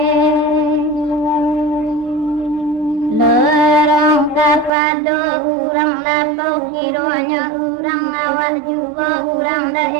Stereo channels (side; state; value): left; drops out; at 4.7 s